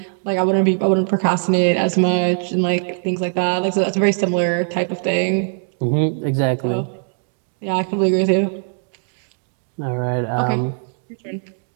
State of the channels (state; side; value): silent; left; digital silence